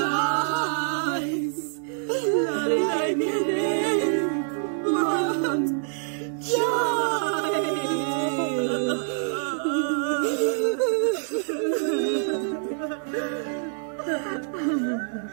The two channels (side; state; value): left; silent; 61 dB below the other